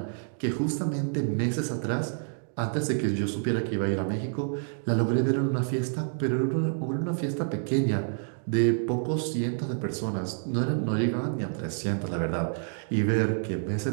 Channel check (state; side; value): silent; left; digital silence